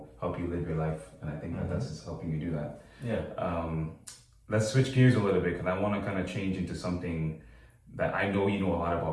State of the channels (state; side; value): identical; both; correlation 1.00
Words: help you live your life, and I think that's just helping you do that. Yeah. Let's switch gears a little bit because I want to kind of change into something that I know you know a lot